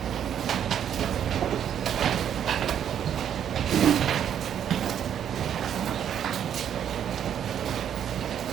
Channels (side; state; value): left; quieter; 9.3 dB